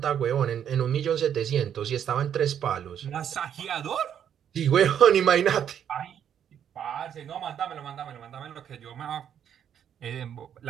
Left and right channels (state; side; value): quieter; left; 9.1 dB